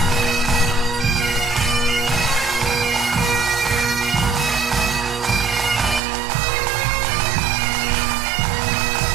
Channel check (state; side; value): drops out; left; at 6.0 s